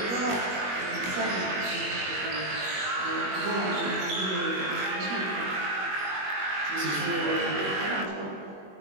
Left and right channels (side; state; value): left; late; 21 ms